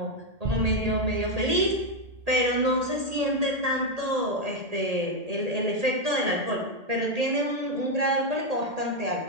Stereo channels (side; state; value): left; late; 1.8 ms